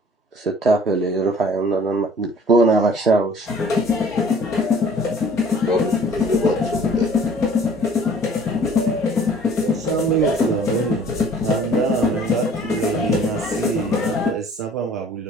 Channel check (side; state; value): both; normal; correlation 0.52